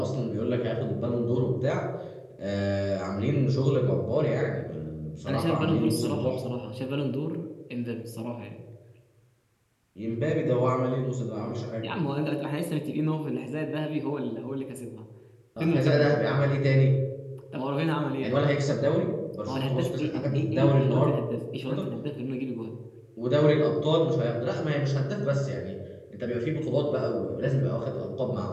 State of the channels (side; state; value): both; identical; correlation 1.00